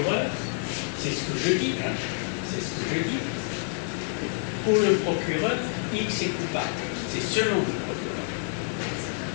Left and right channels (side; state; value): right; silent; 60 dB below the other